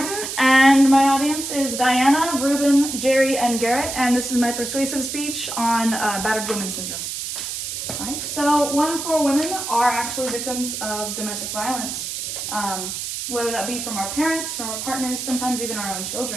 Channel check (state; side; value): noise; right; hiss, 5 dB below the sound